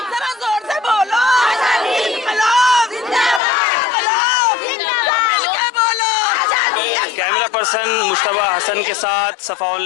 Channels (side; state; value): right; drops out; at 3.4 s